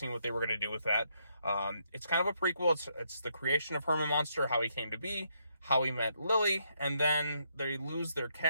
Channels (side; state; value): both; inverted; correlation -0.76